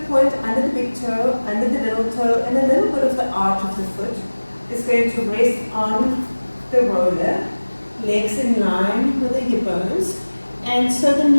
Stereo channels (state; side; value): inverted; both; correlation -1.00